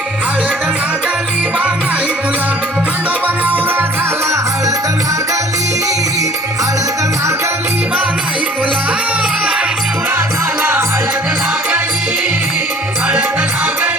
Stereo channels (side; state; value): both; normal; correlation 0.50